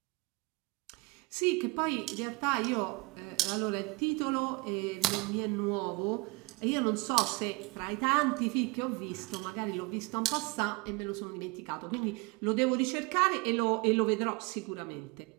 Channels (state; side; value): quieter; left; 25.6 dB